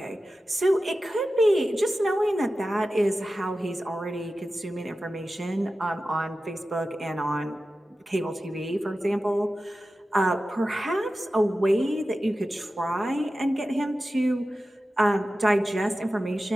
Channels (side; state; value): both; normal; correlation 0.94